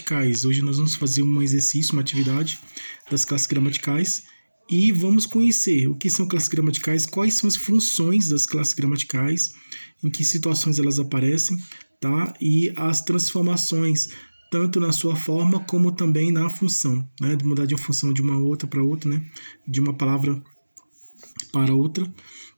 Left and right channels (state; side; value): inverted; both; correlation -1.00